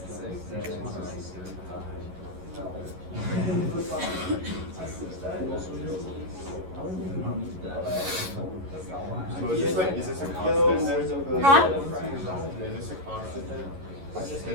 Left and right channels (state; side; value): late; left; 11 ms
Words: So is this a constant? Huh? Is this a constant?